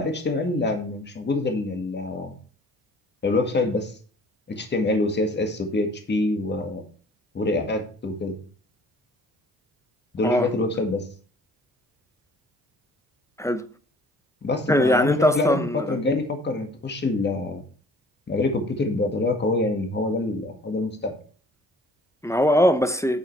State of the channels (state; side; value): normal; both; correlation 0.54